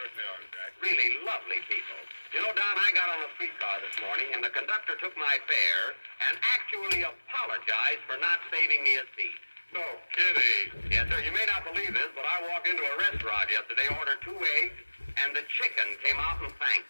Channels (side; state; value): both; inverted; correlation -1.00